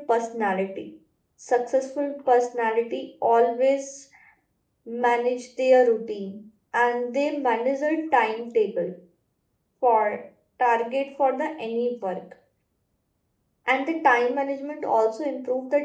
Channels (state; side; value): identical; both; correlation 1.00